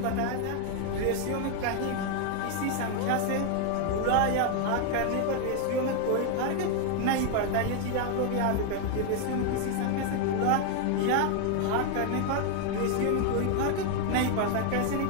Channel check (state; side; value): different; both; correlation 0.00